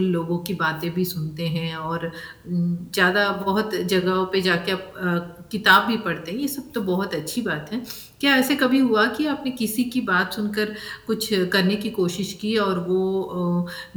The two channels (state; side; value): identical; both; correlation 1.00